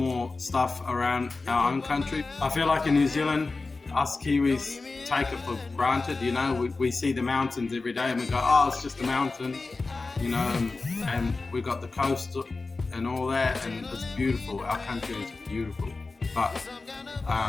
stuff around our own country. I feel like in New Zealand, us Kiwis take it for granted, you know, we see the mountains every day and we go, oh, it's just a mountain, you know, and we got the coast and all that, and it's beautiful. Our country is beautiful, but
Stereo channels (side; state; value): right; quieter; 3.7 dB